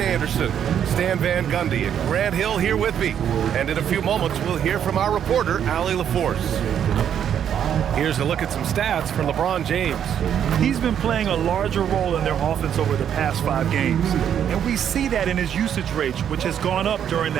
Anderson, Stan Van Gundy, and Grant Hill here with me. And in a few moments, we'll hear from our reporter, Allie LaForce. Here's a look at some stats for LeBron James. He's been playing a larger role in their offense over the past 5 games. And we see that in his usage rate, which has gone up during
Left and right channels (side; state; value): left; quieter; 9.1 dB